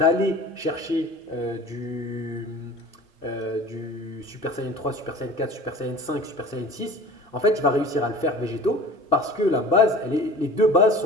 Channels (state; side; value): normal; both; correlation 0.41